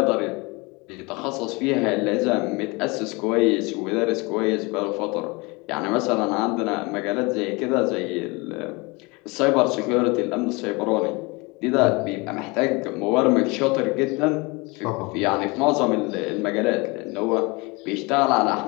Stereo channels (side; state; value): right; quieter; 26.5 dB